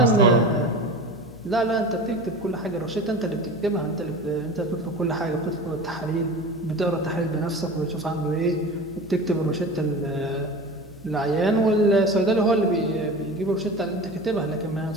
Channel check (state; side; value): noise; left; hum, 20 dB below the sound